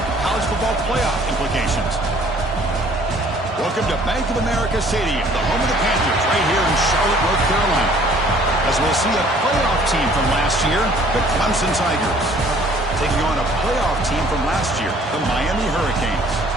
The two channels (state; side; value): normal; both; correlation 0.56